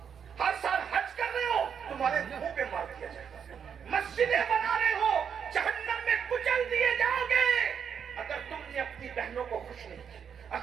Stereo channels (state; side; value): quieter; left; 7.4 dB